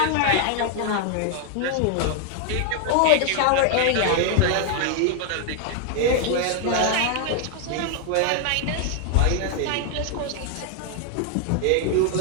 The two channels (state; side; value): different; both; correlation 0.00